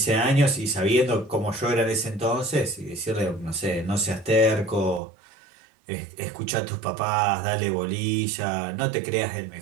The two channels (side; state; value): left; drops out; at 5.0 s